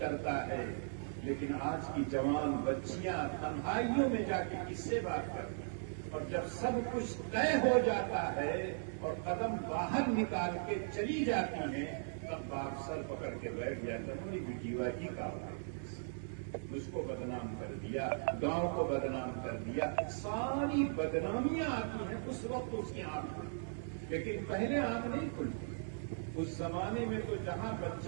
ہے، لیکن آج کی جوان بچیاں تنہائیوں میں جا کے کس سے بات کرتی ہیں؟ اور جب سب کچھ طے ہو جاتا ہے اور قدم باہر نکال کے چلی جاتی ہیں، تب باپ سر پکڑ کے بیٹھ جاتا ہے، میری بیٹیوا ہی کا اس کو بدنام کر دیا، گاؤں کو بدنام کر دیا۔ ساری بدنامیاں آتی ہیں اس وقت اس کی آنکھ کھلتی، لیکن پہلے آنکھ نہیں کھلتی۔ اس زمانے میں تو جہاں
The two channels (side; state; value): left; silent; digital silence